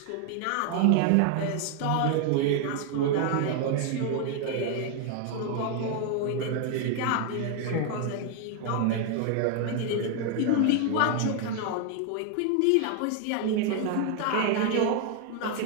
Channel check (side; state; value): both; different; correlation 0.00